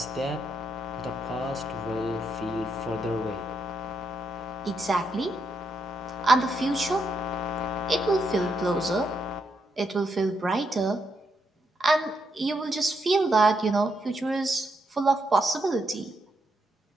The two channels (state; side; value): normal; both; correlation 0.79